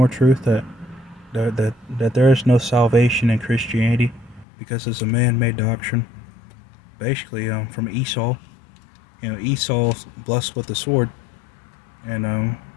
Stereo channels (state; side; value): drops out; right; at 4.5 s